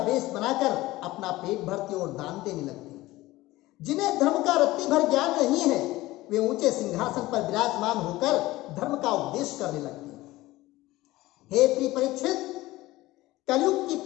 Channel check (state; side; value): quieter; right; 18.2 dB